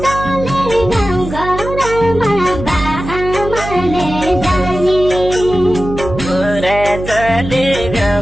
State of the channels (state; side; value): noise; right; hum, 9 dB below the sound